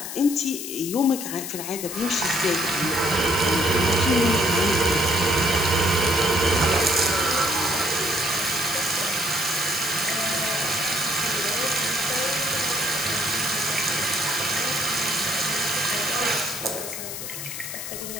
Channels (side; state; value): left; noise; hiss, 7 dB below the sound